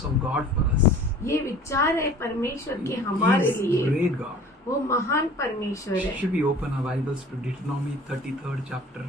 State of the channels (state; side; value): normal; both; correlation 0.46